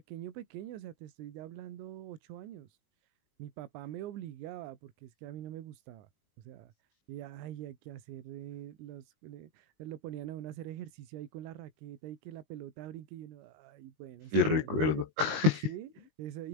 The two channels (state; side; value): late; left; 19 ms